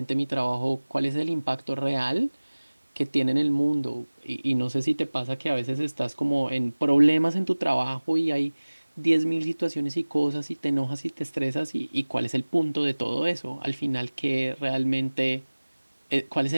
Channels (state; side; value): inverted; both; correlation -1.00